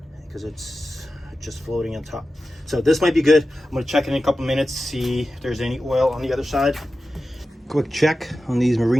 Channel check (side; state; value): both; normal; correlation 0.93